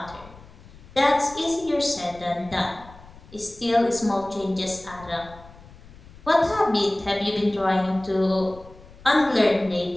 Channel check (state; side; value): noise; left; rumble, 21 dB below the sound